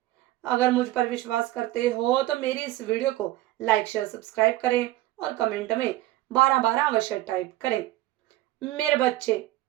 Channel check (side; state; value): left; quieter; 16.5 dB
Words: अगर मुझ पर विश्वास करते हो तो मेरी इस वीडियो को लाइक शेयर सब्सक्राइब करें और कमेंट में 12 12 अवश्य टाइप करें। मेरे बच्चे,